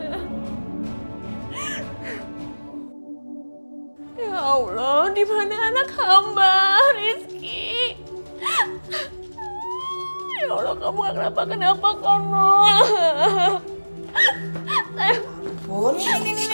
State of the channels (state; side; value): inverted; both; correlation -1.00